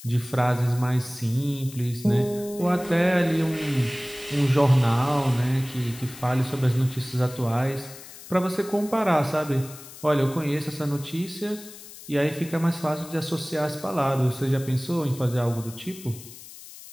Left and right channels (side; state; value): left; noise; hiss, 16 dB below the sound